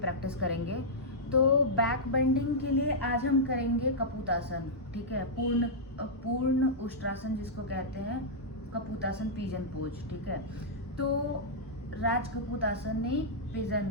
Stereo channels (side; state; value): both; normal; correlation -0.10